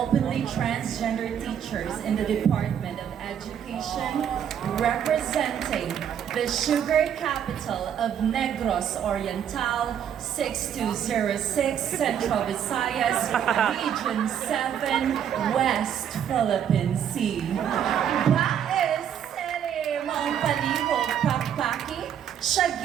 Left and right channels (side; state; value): left; quieter; 9.0 dB